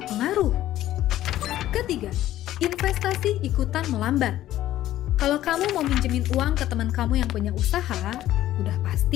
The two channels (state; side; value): quieter; right; 13.6 dB